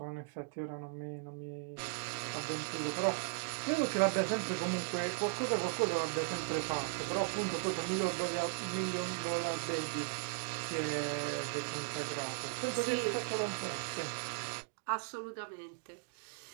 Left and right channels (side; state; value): left; quieter; 39.0 dB